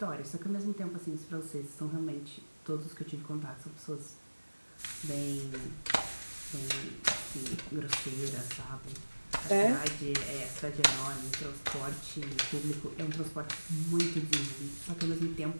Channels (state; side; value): inverted; both; correlation -1.00